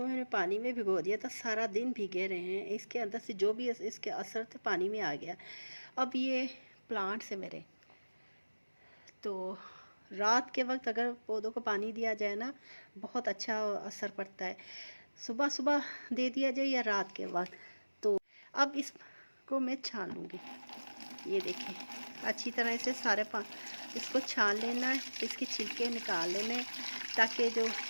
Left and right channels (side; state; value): both; inverted; correlation -1.00